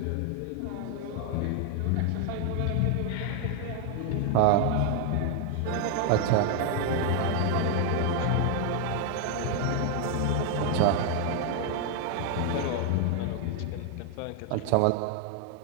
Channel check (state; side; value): different; both; correlation 0.00